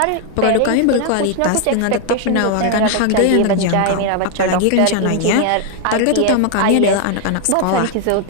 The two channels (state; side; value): different; both; correlation 0.00